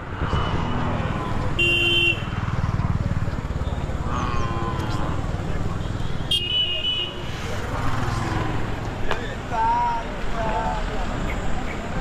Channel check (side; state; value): both; identical; correlation 1.00